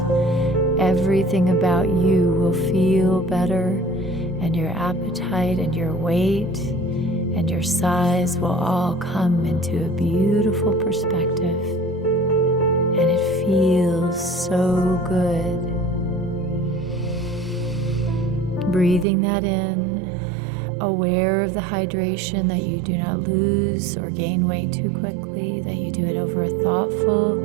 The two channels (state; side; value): drops out; left; at 19.1 s